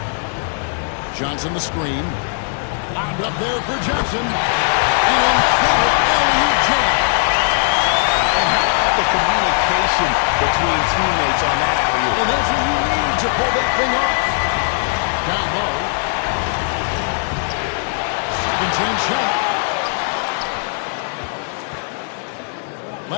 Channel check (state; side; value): silent; right; 64 dB below the other